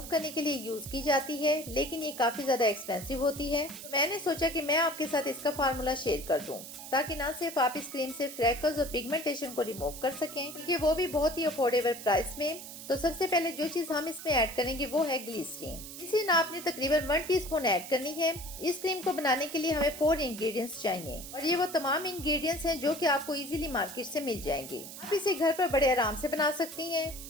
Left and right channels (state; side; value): noise; right; hiss, 12 dB below the sound